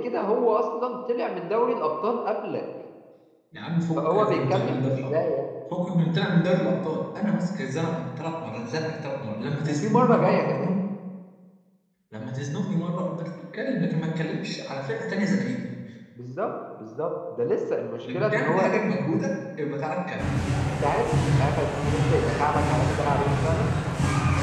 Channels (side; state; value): both; identical; correlation 1.00